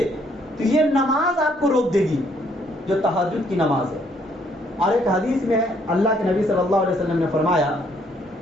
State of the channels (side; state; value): both; normal; correlation 0.67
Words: تو یہ نماز آپ کو روک دے گی، جو تہجد کی نماز ہے۔ اور ایک حدیث میں اللہ کے نبی صلی اللہ علیہ وسلم نے فرمایا